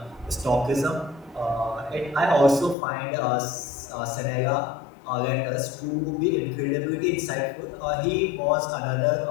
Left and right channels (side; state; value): right; drops out; at 2.8 s